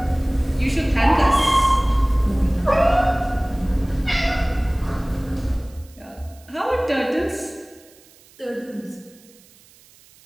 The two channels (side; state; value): right; noise; hiss, 27 dB below the sound